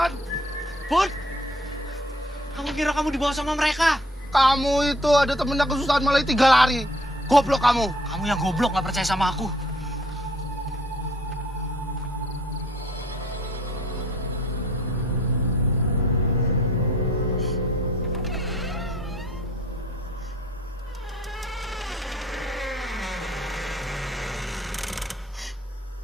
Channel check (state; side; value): normal; both; correlation 0.59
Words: Bud, kamu kira kamu dibawa sama mereka? Kamu itu ada temennya kesusahan malah tinggal lari. Goblok kamu. Kamu yang goblok nggak percaya sama aku.